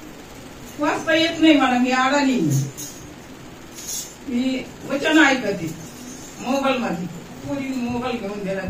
वाचता येत नाही मला, मी अडाणी. मी वचन ऐकते मोबाईल मध्ये. पुरी मोबाईल घेऊन दिला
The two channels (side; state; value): both; identical; correlation 1.00